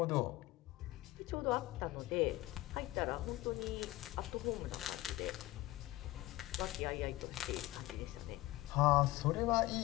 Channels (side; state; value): right; quieter; 18.0 dB